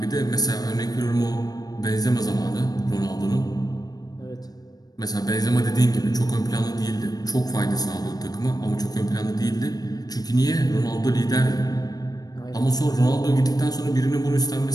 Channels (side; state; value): right; late; 0.19 ms